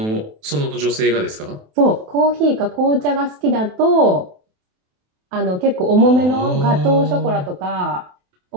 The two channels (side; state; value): left; late; 28 ms